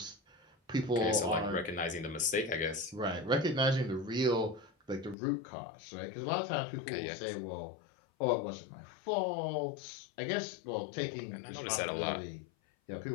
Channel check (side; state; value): right; drops out; at 5.2 s